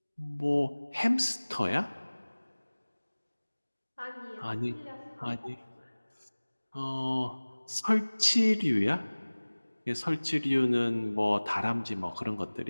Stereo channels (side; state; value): both; inverted; correlation -1.00